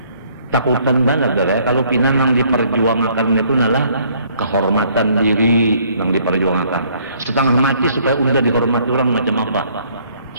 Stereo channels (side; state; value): both; inverted; correlation -0.63